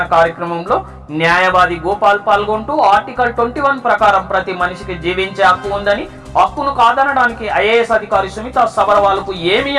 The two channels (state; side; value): identical; both; correlation 1.00